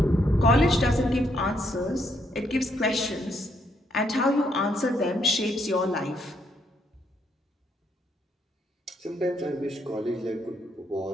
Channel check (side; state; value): both; normal; correlation 0.74